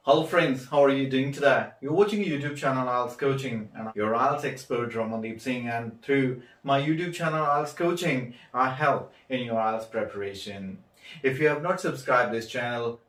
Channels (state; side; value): identical; both; correlation 1.00